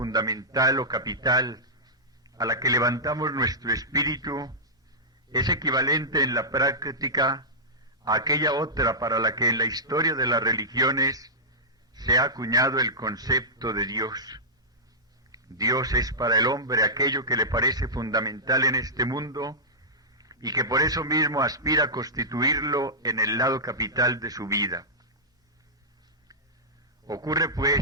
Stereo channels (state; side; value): normal; both; correlation -0.13